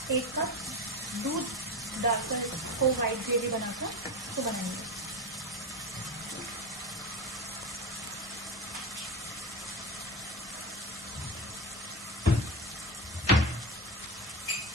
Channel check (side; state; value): both; normal; correlation 0.22